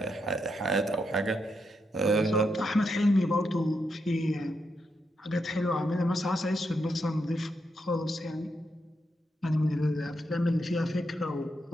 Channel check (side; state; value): both; normal; correlation 0.82